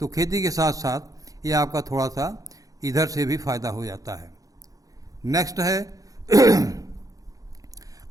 खेती के साथ साथ ये आपका थोड़ा सा इधर से भी फ़ायदा हो जाता है। नेक्स्ट है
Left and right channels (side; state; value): left; late; 0.17 ms